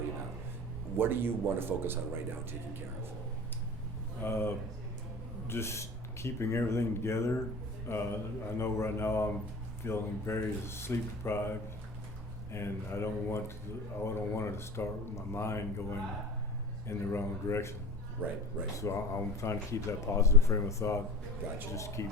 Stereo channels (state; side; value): normal; both; correlation 0.36